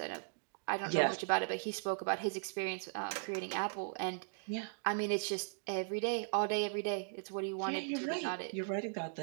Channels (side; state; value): left; silent; digital silence